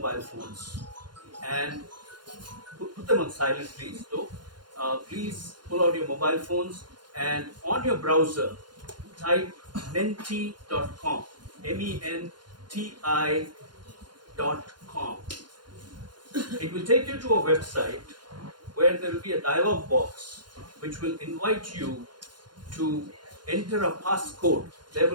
phones and put them on silent, please. Though, please pull out your mobile phones and on your browser type menti.com, menti.com. It will take you to a website where there will be a dialog box which will invite you to enter a passcode. There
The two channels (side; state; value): left; late; 0.71 ms